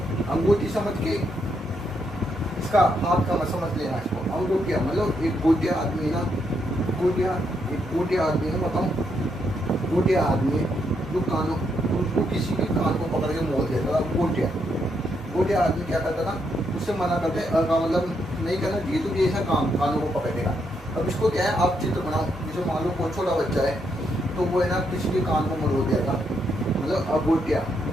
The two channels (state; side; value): normal; both; correlation 0.78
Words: अंगूठी समझ के इसका हाथ का मत समझ लेना इसको। अंगूठिया मतलब एक गोटिया आदमी ना, गोटिया आदमी ना, बताऊँ गोटिया आदमी जो कानों, उनको किसी भी कान को पकड़ के मोड़ देता था, गोटिया आदमी क्या करता था? उससे मना करते मतलब नहीं करना चाहिए, तो ये ऐसा काम कानों को पकड़ेगा। अब इसको क्या है? आप चित्र बनाओ, जैसे मान लो कोई छोटा बच्चा है, तो वो है ना किसी के कान को मरोड़ देगा, मतलब अगोटिया।